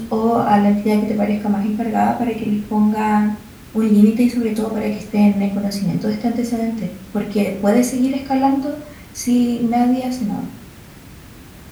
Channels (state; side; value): identical; both; correlation 1.00